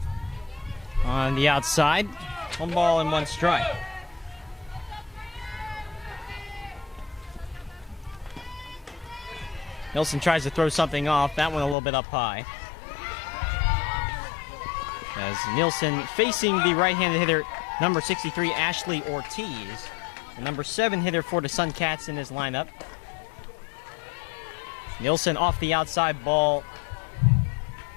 on the outside. 1 ball and 1 strike. Nielsen tries to throw something off. That one a little bit up high. As Nielsen facing the right-handed hitter, number 63, Ashley Ortiz. The number 7 hitter for the Suncats in his lineup. Nielsen off the outside, ball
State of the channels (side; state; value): right; drops out; at 11.8 s